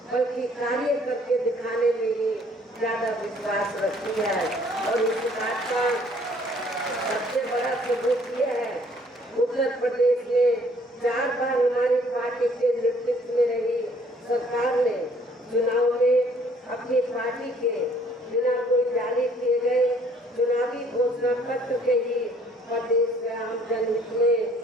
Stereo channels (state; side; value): normal; both; correlation 0.60